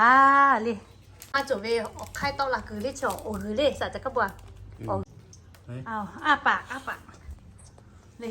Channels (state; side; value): identical; both; correlation 1.00